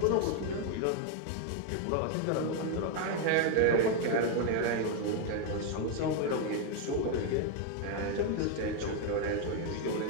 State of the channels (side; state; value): both; different; correlation 0.01